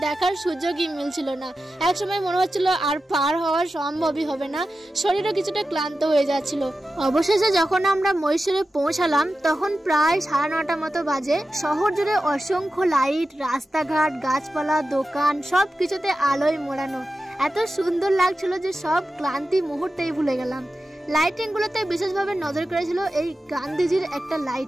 দেখার সুযোগই মিলছিল না। এক সময় মনে হচ্ছিল আর পার হওয়ার সম্ভবই হবে না, শরীরও কিছুটা ক্লান্ত হয়ে যাচ্ছিল। অবশেষে যখন আমরা মহীশূরে পৌঁছালাম তখন প্রায় 9:30 মতো বাজে। শহর জুড়ে অসংখ্য লাইট, রাস্তাঘাট, গাছপালা, দোকান সবকিছুতে আলোয় মোড়ানো। এত সুন্দর লাগছিল যে সব ক্লান্তি মুহূর্তেই ভুলে গেলাম। লাইটিং গুলোতে বিশেষভাবে নজর করেছিল এই গান্ধীজির একটা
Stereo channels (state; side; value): normal; both; correlation 0.93